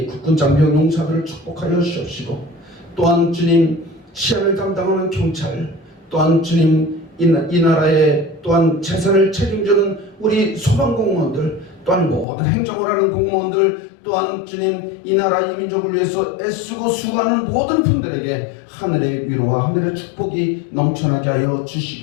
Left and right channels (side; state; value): right; drops out; at 12.2 s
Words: 국군 장병 용사들을 축복하여 주옵시고 또한 주님 치안을 담당하는 경찰 또한 주님 이 나라의 또한 재산을 책임지는 우리 소방공무원들 또한 모든 행정을 하는 공무원들, 또한 주님 이 나라 이 민족을 위해서 애쓰고 수고하는 모든 분들에게 하늘의 위로와 하늘의 축복이 넘쳐나게 하여